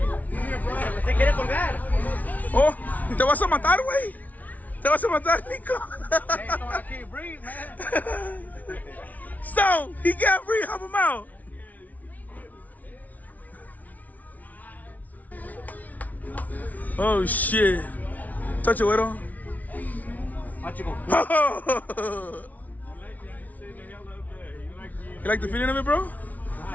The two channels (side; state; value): right; late; 0.074 ms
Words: Se quiere colgar. Oh, te vas a matar, güey. Te vas a matar, Nico. Hey, so I can't breathe, man. So, he can't breathe. Help him out. Oh shit. Touch it, güero. Watch it go. You like the feeling of it, bro?